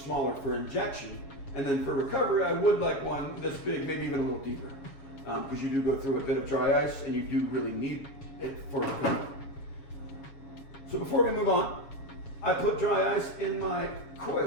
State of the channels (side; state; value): right; late; 7.2 ms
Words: for injection. And then for recovery, I would like one this big, maybe even a little deeper, because you do go through a bit of dry ice and you do really need it for recovery. So before we move on, I put dry ice in my